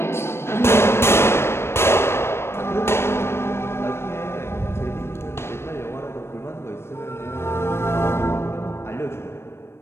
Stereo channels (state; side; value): late; right; 0.12 ms